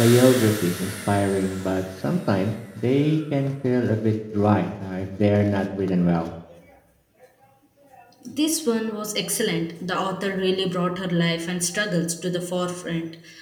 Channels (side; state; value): both; identical; correlation 1.00